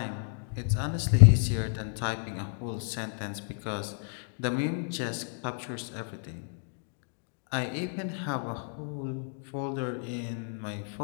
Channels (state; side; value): silent; right; 57 dB below the other